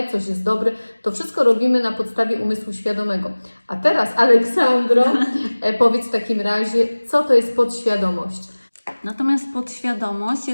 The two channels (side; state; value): both; inverted; correlation -1.00